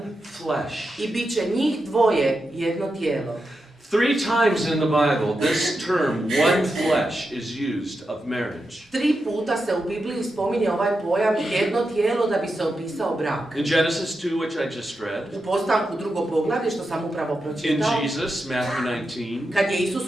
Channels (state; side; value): normal; both; correlation 0.88